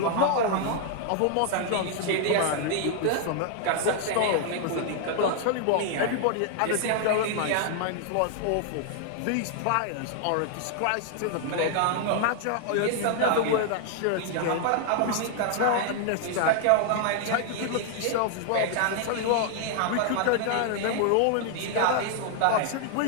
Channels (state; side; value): different; both; correlation 0.00